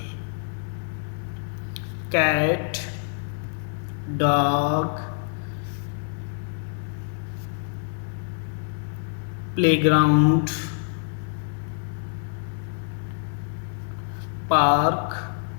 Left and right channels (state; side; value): silent; right; digital silence